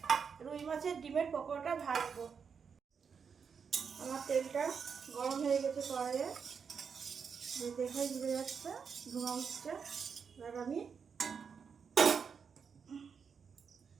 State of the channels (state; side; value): quieter; left; 6.3 dB